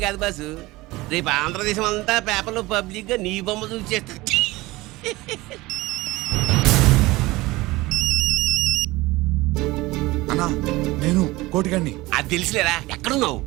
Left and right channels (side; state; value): left; quieter; 20.2 dB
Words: కాదు బాసు రేపు ఆంధ్రదేశం అంతా పేపర్లో పబ్లిక్ గా నీ బొమ్మ చూసి చేస్తా అన్నా నేను కోటిగాన్ని అది తెలిసిలేరా ఎక్కడున్నావు